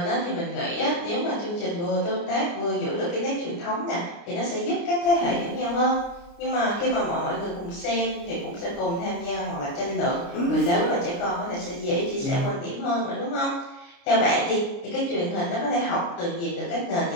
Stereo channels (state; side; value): late; right; 29 ms